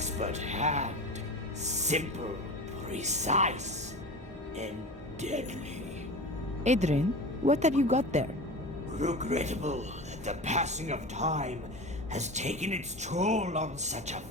hand. Simple, precise, and deadly. Adrian, what have you got there? Regrettable that the passing of time has taken its toll on such a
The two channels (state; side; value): normal; both; correlation 0.31